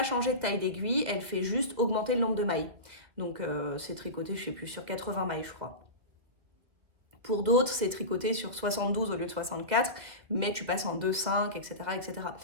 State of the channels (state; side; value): late; left; 2.4 ms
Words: changer de taille d'aiguille, elle fait juste augmenter le nombre de mailles. Donc, c'est tricoté, je sais plus, sur 80 mailles, je crois. Pour d'autres, c'est tricoté sur 72 au lieu de 64, mais tu passes en 2,5, etc., etc.